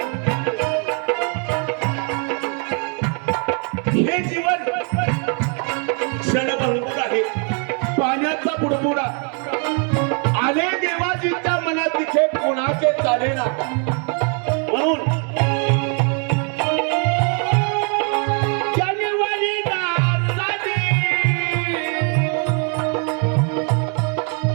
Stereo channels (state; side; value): quieter; left; 39.1 dB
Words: हे जीवन क्षणभंगूर आहे, पाण्याचा बुडबुडा. आले देवाजीच्या मनात तिथे कोणाचे चालेना. म्हणून जानेवारी दासाने